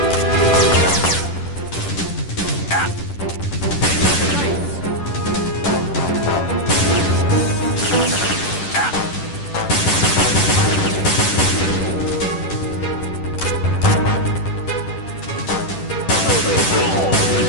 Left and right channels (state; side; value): late; right; 10 ms